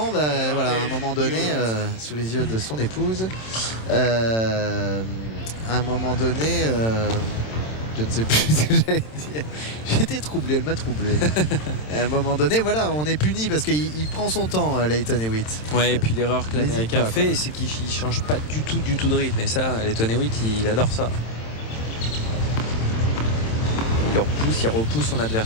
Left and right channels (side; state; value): right; late; 27 ms